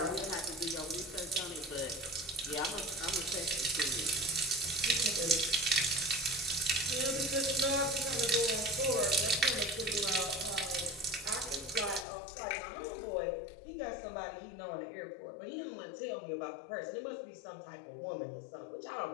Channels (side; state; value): right; drops out; at 12.1 s